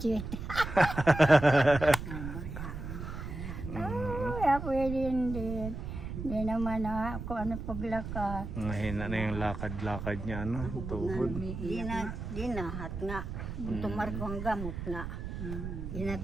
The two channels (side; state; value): right; noise; rumble, 7 dB below the sound